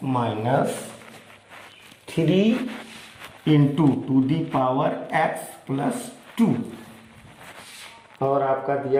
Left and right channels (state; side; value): identical; both; correlation 1.00